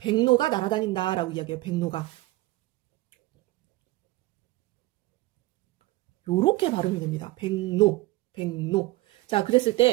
날아다닌다라고 이야기해요. 백로가. 요렇게 발음이 됩니다. 백로. 자, 그랬을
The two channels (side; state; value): left; quieter; 19.3 dB